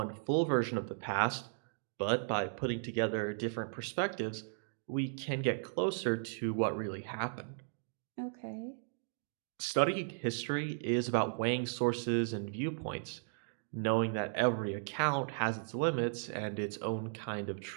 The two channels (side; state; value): left; silent; digital silence